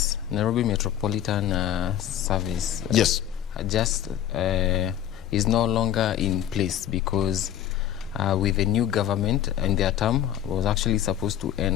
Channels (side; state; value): right; quieter; 11.1 dB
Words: Nairobi Metropolitan Service, yes, just is no longer in place, because with the new government, and their term was actually supposed to